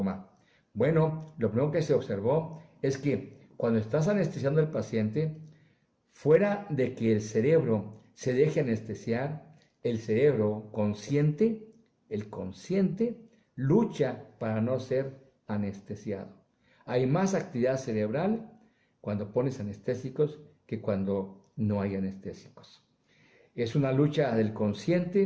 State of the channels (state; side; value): identical; both; correlation 1.00